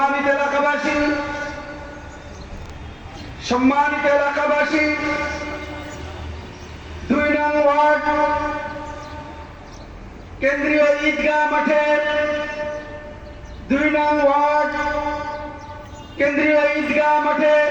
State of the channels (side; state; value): both; identical; correlation 1.00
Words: এলাকাবাসী, সম্মানিত এলাকাবাসী, ২ নং ওয়ার্ড কেন্দ্রীয় ঈদগাহ মাঠে, ২ নং ওয়ার্ড কেন্দ্রীয় ঈদগাহ মাঠে